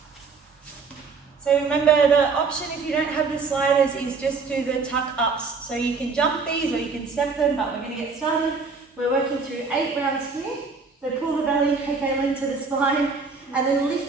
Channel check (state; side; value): quieter; left; 4.7 dB